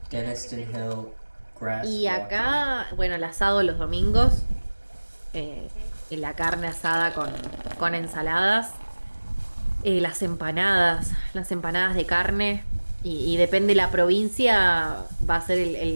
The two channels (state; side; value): inverted; both; correlation -1.00